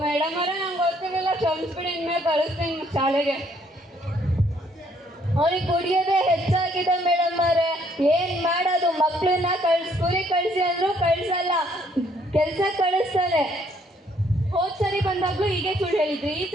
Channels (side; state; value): both; normal; correlation 0.66